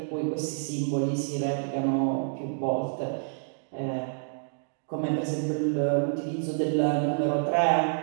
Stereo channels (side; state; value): left; silent; digital silence